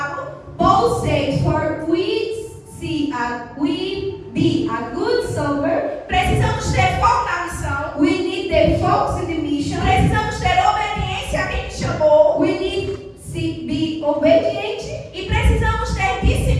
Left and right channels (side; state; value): both; identical; correlation 1.00